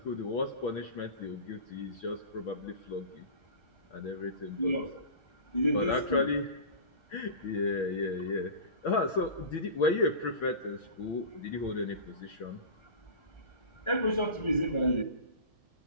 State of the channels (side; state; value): right; late; 1.4 ms